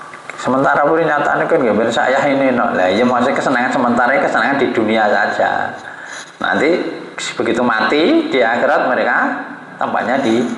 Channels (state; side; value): identical; both; correlation 1.00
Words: Sementara pun nyatane kan nggih saya ini no. Lah ya maksudnya kesenangan sementara, kesenangan di dunia saja. Nanti begitu mati di akhirat mereka tempatnya di